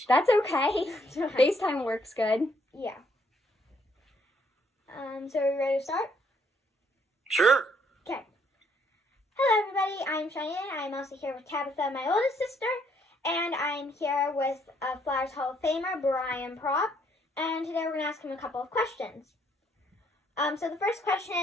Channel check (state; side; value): normal; both; correlation 0.68